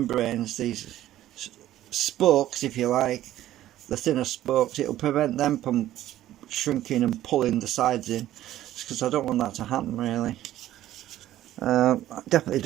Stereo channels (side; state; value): left; quieter; 13.5 dB